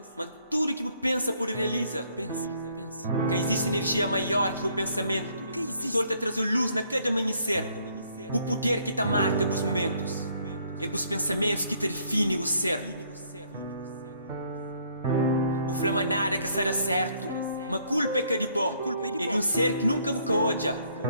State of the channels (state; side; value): inverted; both; correlation -0.65